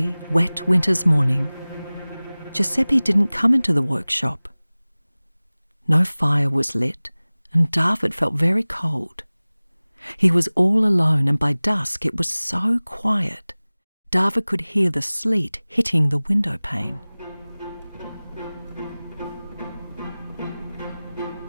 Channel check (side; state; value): both; inverted; correlation -0.99